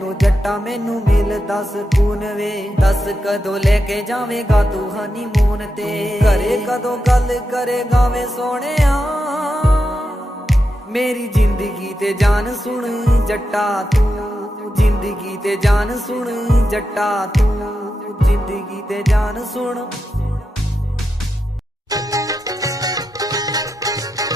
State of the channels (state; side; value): normal; both; correlation 0.88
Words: जट्टा मैनू मिलदा सकून वे, दस कदों लेके जावेगा तू हनीमून ते, घरे कदों गल करेगा वे सोहणिया, मेरी जिंदगी ते जान सुन जट्टा तू, जिंदगी ते जान सुन जट्टा तू, जिंदगी ते जान सुन।